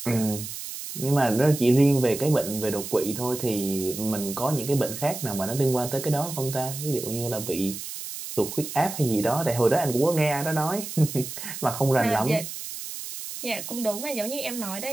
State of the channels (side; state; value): right; noise; hiss, 8 dB below the sound